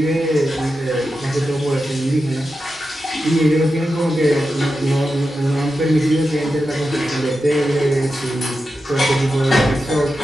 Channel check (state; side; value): normal; both; correlation 0.90